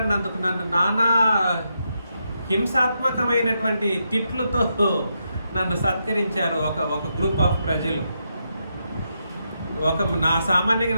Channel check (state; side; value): inverted; both; correlation -0.82